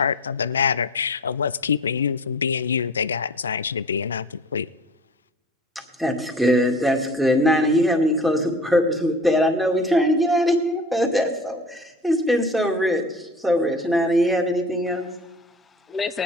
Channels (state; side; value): normal; both; correlation 0.41